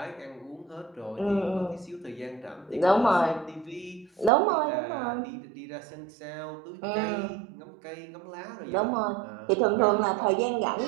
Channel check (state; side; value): drops out; left; at 4.3 s